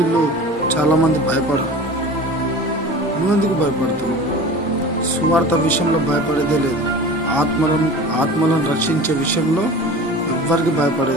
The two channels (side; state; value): both; normal; correlation 0.37